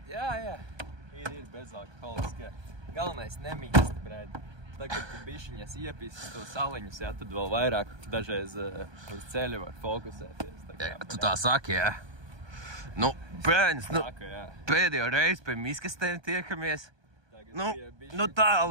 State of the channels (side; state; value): left; late; 1.2 ms